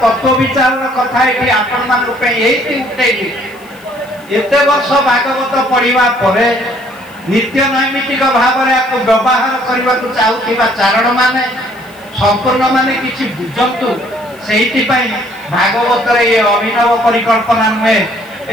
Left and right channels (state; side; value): noise; left; hiss, 27 dB below the sound